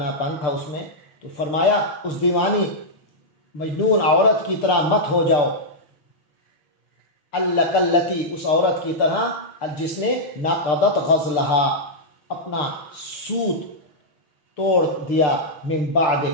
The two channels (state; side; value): late; right; 6.7 ms